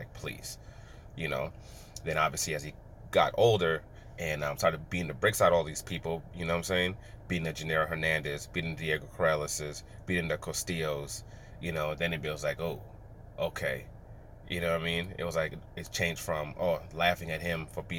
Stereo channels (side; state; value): both; identical; correlation 1.00